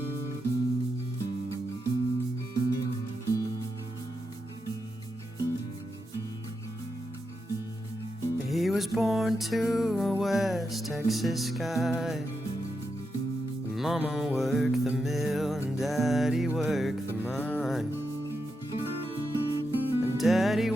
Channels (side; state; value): both; normal; correlation 0.86